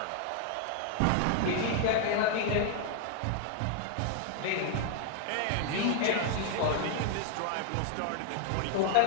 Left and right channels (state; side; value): different; both; correlation 0.00